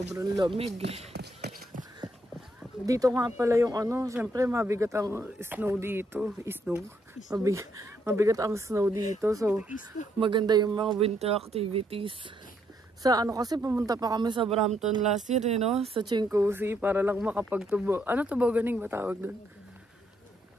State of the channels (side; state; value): both; normal; correlation 0.74